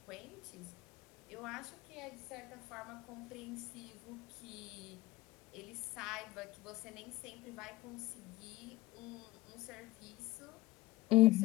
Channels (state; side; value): quieter; right; 18.8 dB